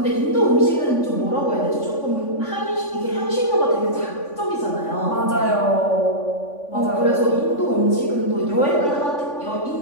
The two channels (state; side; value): late; right; 3.5 ms